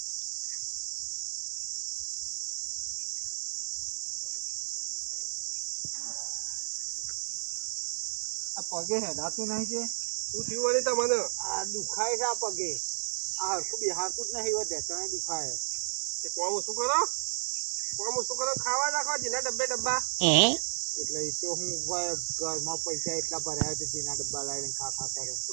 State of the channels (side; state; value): left; silent; digital silence